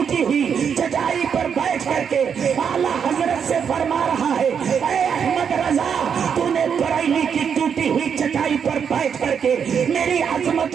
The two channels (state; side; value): quieter; left; 7.2 dB